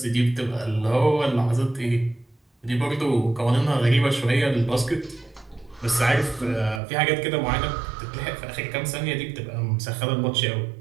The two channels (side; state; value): left; drops out; at 6.8 s